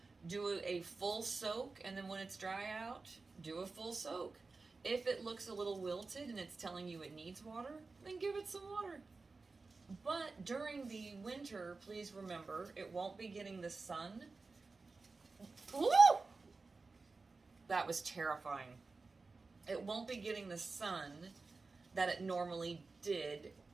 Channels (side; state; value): left; quieter; 3.9 dB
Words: Do a full soak, and then when it's dry out, do a full soak. If it looks a little wilted and it's telling you it needs water, then give it some water. But during the winter, please remember, it won't be getting the sun. Woo! That was terrifying. It won't be getting the sun that it normally did